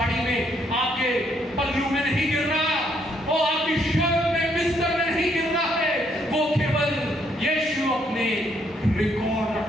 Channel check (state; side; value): normal; both; correlation 0.71